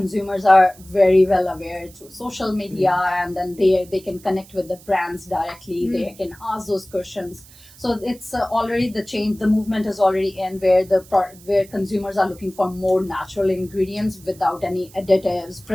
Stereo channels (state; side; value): noise; right; hiss, 23 dB below the sound